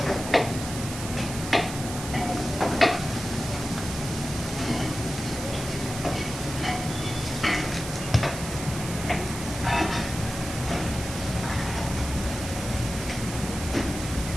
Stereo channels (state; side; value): noise; right; hiss, 9 dB below the sound